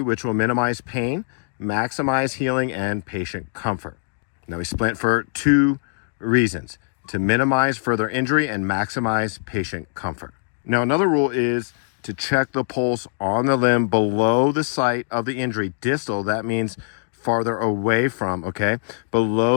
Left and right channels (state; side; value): silent; right; digital silence